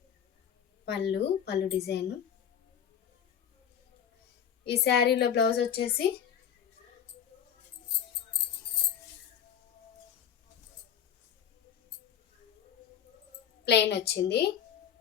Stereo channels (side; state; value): right; quieter; 8.6 dB